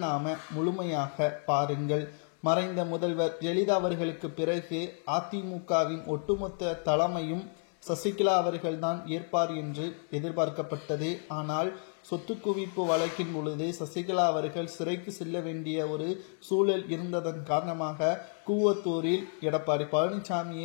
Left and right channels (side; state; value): right; silent; 55 dB below the other